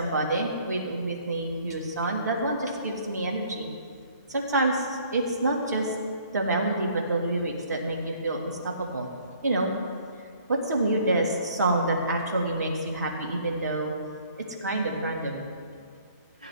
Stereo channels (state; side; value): inverted; both; correlation -0.58